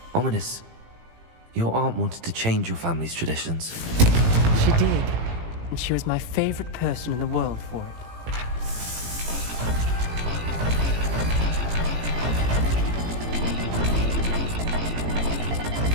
Ominous. Your aunt wanted to change your family's traditions. She did. and she was my favorite person in the world for it.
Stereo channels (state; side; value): late; left; 18 ms